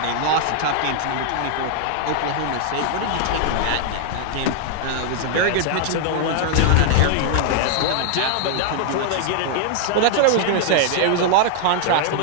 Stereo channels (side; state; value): both; different; correlation -0.01